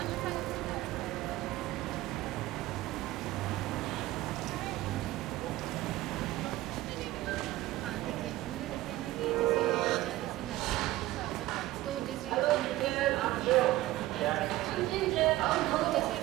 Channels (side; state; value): left; quieter; 16.8 dB